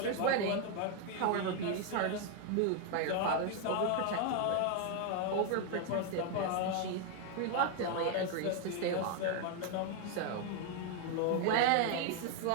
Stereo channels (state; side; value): different; both; correlation 0.01